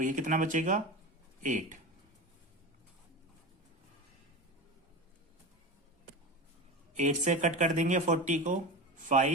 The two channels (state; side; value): normal; both; correlation 0.26